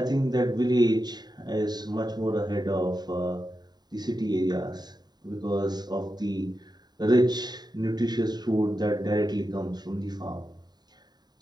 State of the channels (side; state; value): left; late; 0.20 ms